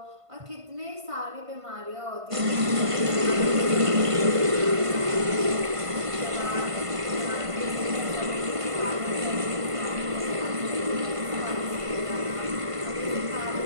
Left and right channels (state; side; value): late; left; 1.5 ms